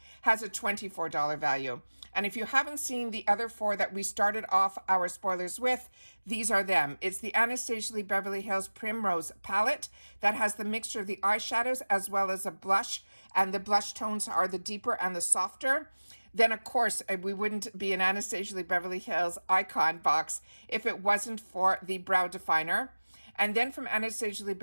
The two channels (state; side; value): inverted; both; correlation -1.00